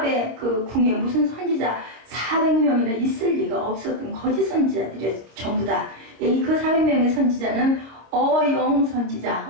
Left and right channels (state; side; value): late; left; 26 ms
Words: 그 궁에 무슨 선지자 400명이나 있을 리가 없었던 거짓 선지자들이 전부 다. 그 400명의 선지자는 어용 선지자,